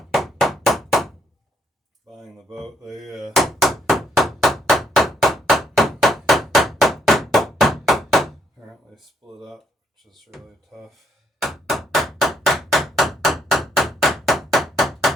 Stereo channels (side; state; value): both; normal; correlation 0.73